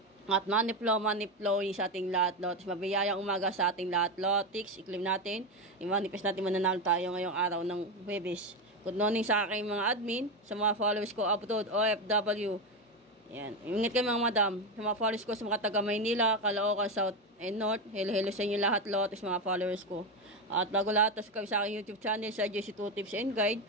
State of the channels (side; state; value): both; normal; correlation 0.13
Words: At money flow sa ating lahat, Lotix. Mabiyayang umaga sa ating lahat, Lotix. I-claim natin. I-manifest natin mananalo tayo ngayong araw ng Huwebes. Good morning sa aking mga admin. Sa mga followers ko, abroad, OFW. Yan. Ingat kayo mga madam. Sa mga followers ko sa mga taga Maynila, Caloocan, South and North. Hello sa inyo lahat, Lotix, mga followers ko. At bago lahat, subscribe sa aking YouTube channel sa JC2 Tips and Guide.